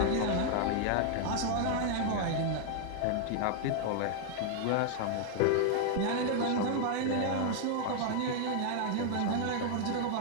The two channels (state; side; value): different; both; correlation 0.00